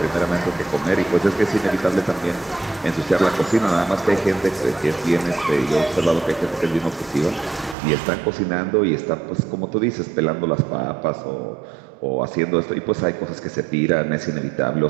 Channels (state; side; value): drops out; left; at 7.8 s